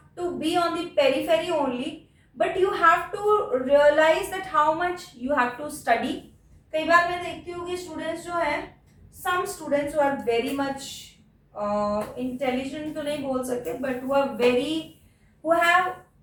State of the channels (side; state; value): both; identical; correlation 1.00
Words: to be on the periphery only, but you have to realise that how much you have to study. कई बार मैं देखती हूँ कि स्टूडेंट्स जो हैं, some students who are very much intelligent तो नहीं बोल सकते, but who have